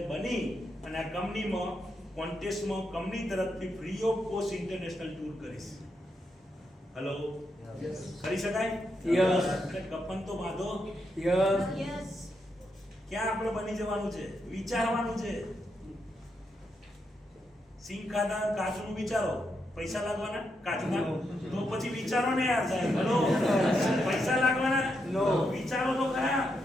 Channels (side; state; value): both; normal; correlation 0.82